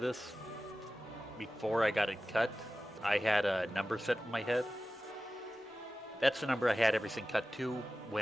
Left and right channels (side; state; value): both; normal; correlation 0.95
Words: this, before I got it cut, I had a number set in my head. That's the number I had everything cut to